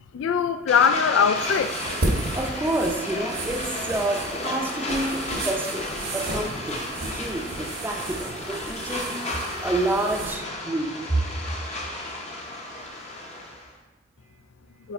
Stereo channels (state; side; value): normal; both; correlation 0.37